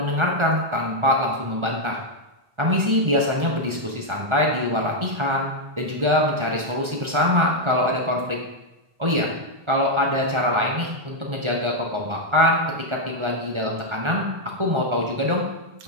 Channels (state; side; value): late; left; 1.4 ms